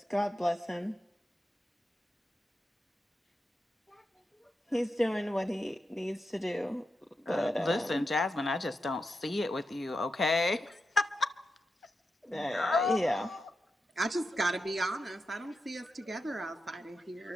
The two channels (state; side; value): normal; both; correlation 0.88